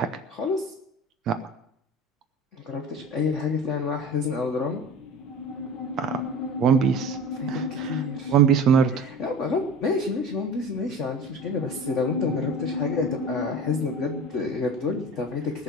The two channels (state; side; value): normal; both; correlation 0.35